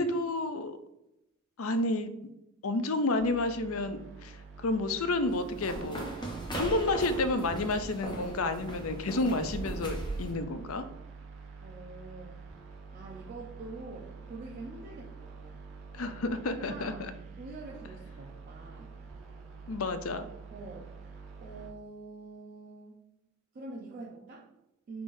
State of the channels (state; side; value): normal; both; correlation 0.13